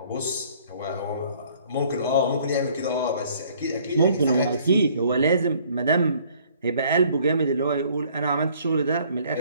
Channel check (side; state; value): both; inverted; correlation -0.59